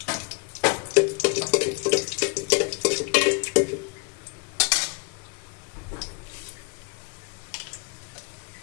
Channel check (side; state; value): right; quieter; 31.6 dB